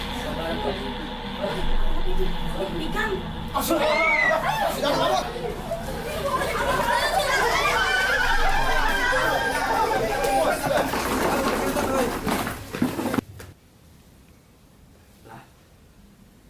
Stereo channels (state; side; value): identical; both; correlation 1.00